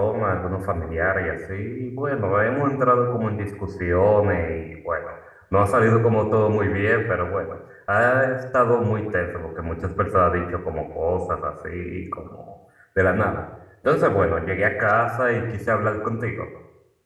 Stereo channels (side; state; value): both; identical; correlation 1.00